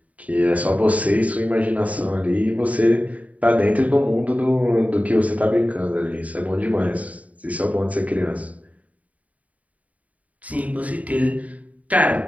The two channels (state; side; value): late; left; 0.070 ms